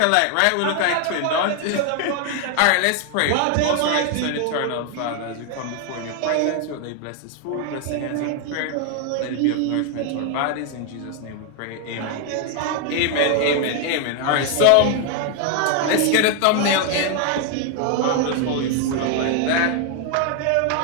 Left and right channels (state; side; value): different; both; correlation 0.01